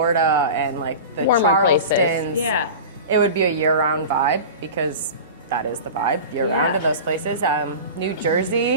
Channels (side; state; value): both; inverted; correlation -0.32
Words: and like the Warmer Charlestons, places. it would be a year-round vibe because that is the vibe year-round in those places. New